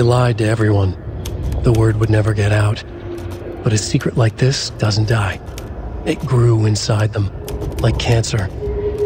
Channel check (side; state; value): both; identical; correlation 1.00